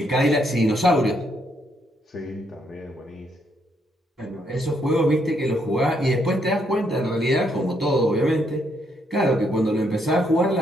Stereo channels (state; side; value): normal; both; correlation 0.74